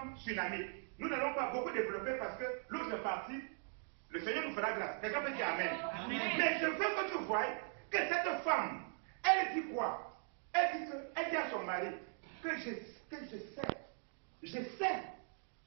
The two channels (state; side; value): silent; left; 51 dB below the other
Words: tsunami. Nous n'allons pas beaucoup développer parce que l'autre partie, le Seigneur nous fera grâce. Quelqu'un peut dire Amen. Amen. Mais je veux que tu voies que cette femme, elle dit quoi? Elle dit à son mari que je sais. Je sais.